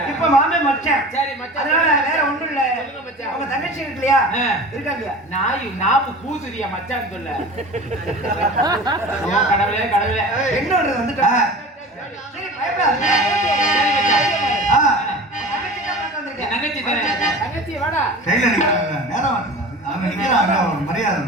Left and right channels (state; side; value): normal; both; correlation 0.37